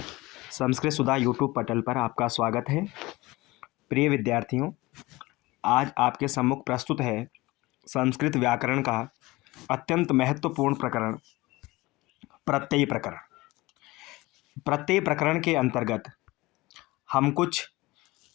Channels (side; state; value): right; quieter; 20.7 dB